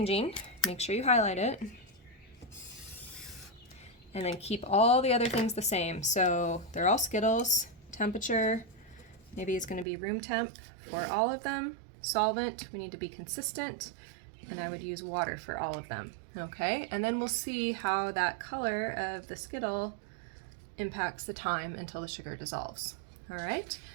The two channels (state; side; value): drops out; left; at 9.9 s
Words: make sure you highlight it. And then keep all the other things the same. So they're all Skittles. Temperature, maybe it's going to be room temp for all of them. Solvent, we need to be consistent. And I would use water for all of them. Okay, and then we'll see how that color of the Skittle impacts the time until the sugar dissolves. All right,